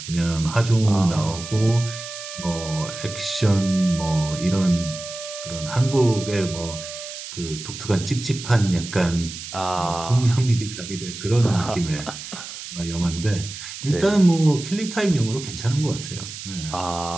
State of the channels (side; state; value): right; noise; hiss, 10 dB below the sound